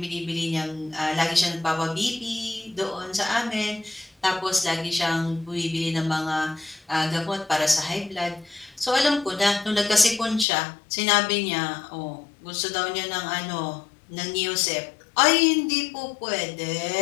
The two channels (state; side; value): drops out; right; at 10.5 s